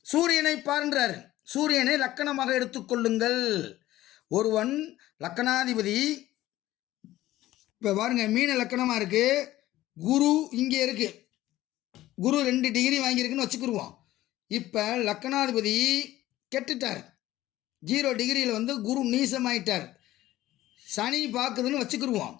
சூரியனை பார்ன்றார். சூரியனை லக்கணமாக எடுத்துக்கொள்ளுங்கள். ஒருவன் லக்கணாதிபதி, இப்போ பாருங்க, மீன லக்கணமாக இருக்கு, குரு இங்கே இருக்கு, குரு 2 டிகிரி வாங்கியிருக்குன்னு வச்சுக்கிடுவோம். இப்போ லக்கணாதிபதி கெட்டுட்டார், 0 டிகிரியில் குரு நீசமாயிட்டார். சனி பார்க்குதுன்னு வச்சுக்கிடுவோம்.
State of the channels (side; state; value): right; quieter; 15.4 dB